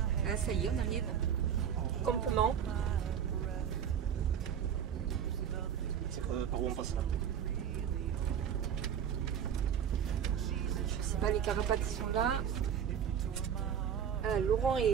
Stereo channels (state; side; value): quieter; left; 8.5 dB